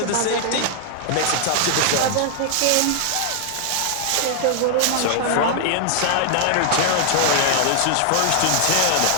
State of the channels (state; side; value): different; both; correlation -0.01